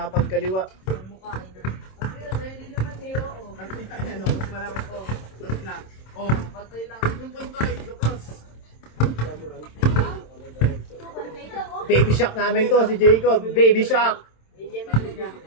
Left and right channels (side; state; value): right; late; 27 ms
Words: Baby Shark namin to, si Jacob. Baby Shark.